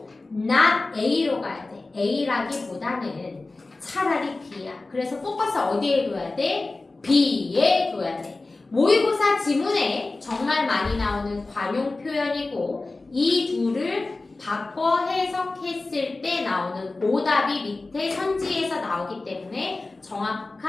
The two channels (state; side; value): quieter; right; 3.3 dB